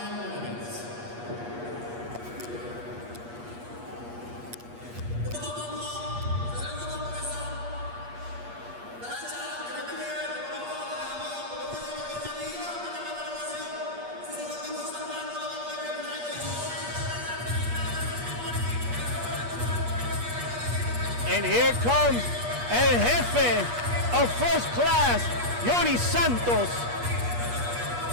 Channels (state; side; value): late; left; 8.4 ms